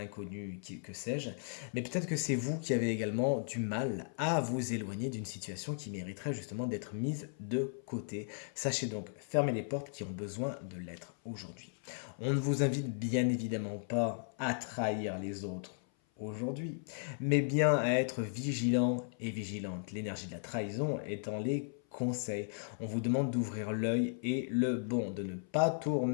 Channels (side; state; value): right; silent; 54 dB below the other